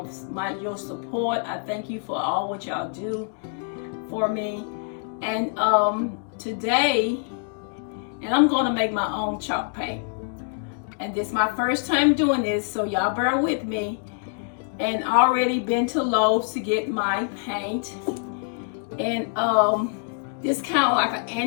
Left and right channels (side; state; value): right; silent; 58 dB below the other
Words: your support. I thank you for all what y'all do for me. And today, I'm going to make my own chalk paint. And this is my first time doing this, so y'all bear with me. And already been to Lowe's to get my paint. And this kind of like an